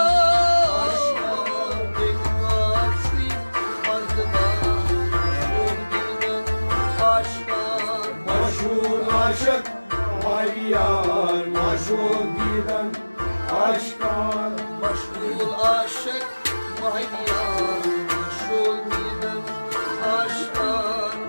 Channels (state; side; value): inverted; both; correlation -1.00